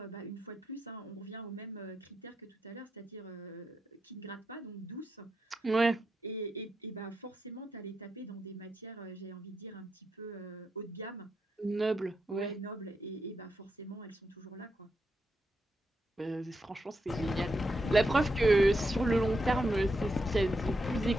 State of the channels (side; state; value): both; normal; correlation 0.84